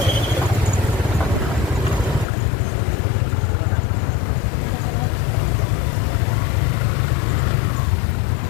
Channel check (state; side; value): drops out; right; at 2.2 s